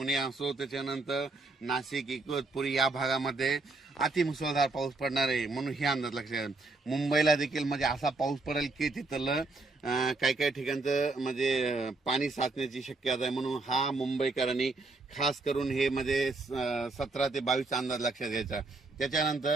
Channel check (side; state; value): left; quieter; 3.4 dB